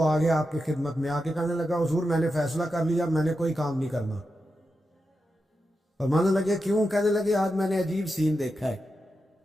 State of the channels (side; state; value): both; normal; correlation 0.89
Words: آگے آپ کی خدمت میں آ کے کہنے لگا حضور میں نے فیصلہ کر لیا، میں نے کوئی کام نہیں کرنا۔ فرمانے لگے کیوں؟ کہنے لگے آج میں نے عجیب سین دیکھا ہے۔